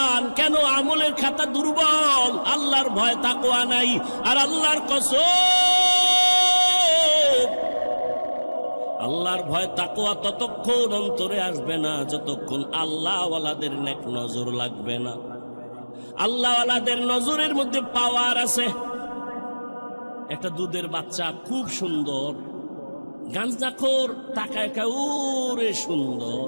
কেন? আমলের খাতা দুর্বল, আল্লাহর ভয় তাকওয়া নাই। আর আল্লাহর কসম, আল্লাহর ভয় তাকওয়া ততক্ষণ অন্তরে আসবে না যতক্ষণ আল্লাহওয়ালাদের নেক নজর লাগবে না। আল্লাহওয়ালাদের নজরের মধ্যে পাওয়ার আছে। একটা দুধের বাচ্চা খুব সুন্দর, গাঞ্জাখোর তাকায় ওরে সুন্দর,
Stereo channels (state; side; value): inverted; both; correlation -1.00